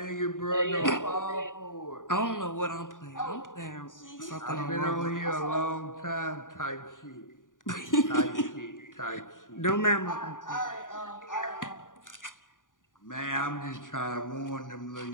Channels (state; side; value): late; right; 0.88 ms